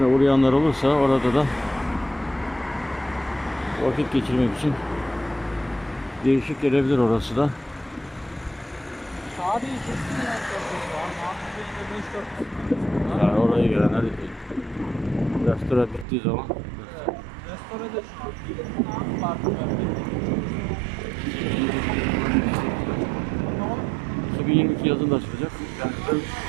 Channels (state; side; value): drops out; left; at 16.1 s